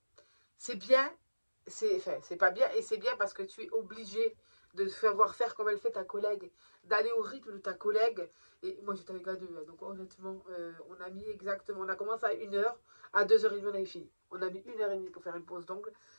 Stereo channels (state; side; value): inverted; both; correlation -1.00